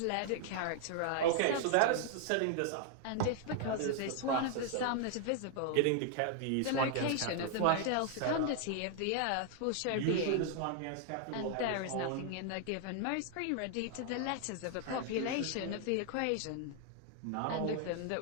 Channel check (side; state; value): both; different; correlation 0.00